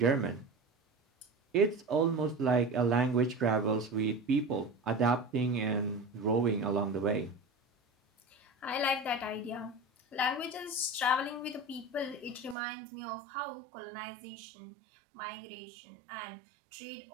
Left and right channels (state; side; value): drops out; left; at 12.6 s